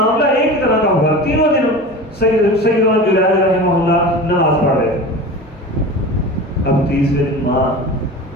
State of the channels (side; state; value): both; normal; correlation 0.33